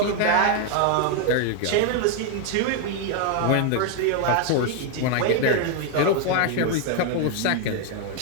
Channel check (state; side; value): different; both; correlation 0.00